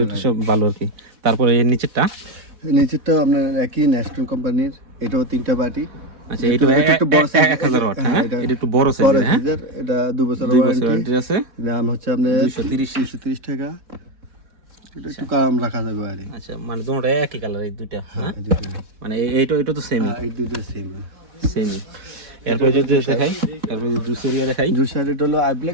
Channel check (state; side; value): late; left; 4.1 ms